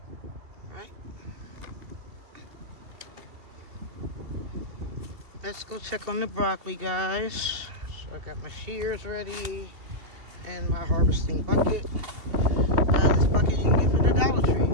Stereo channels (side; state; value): left; late; 2.7 ms